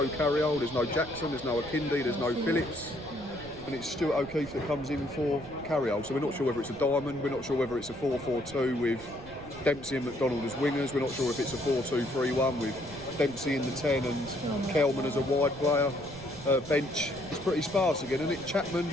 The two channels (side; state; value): right; noise; rumble, 19 dB below the sound